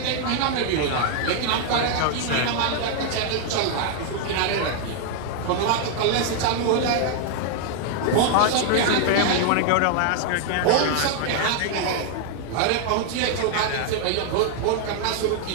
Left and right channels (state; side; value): different; both; correlation 0.00